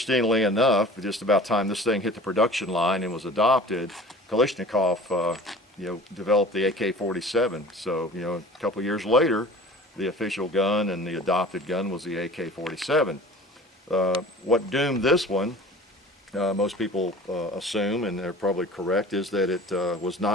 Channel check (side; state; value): both; normal; correlation 0.43